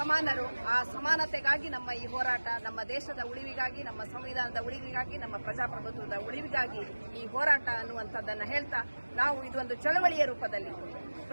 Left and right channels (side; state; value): both; inverted; correlation -1.00